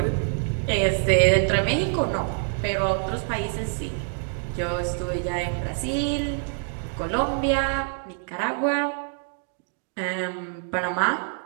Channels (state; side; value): silent; left; 61 dB below the other